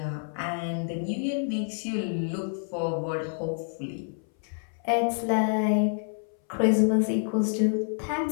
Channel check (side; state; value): right; silent; 58 dB below the other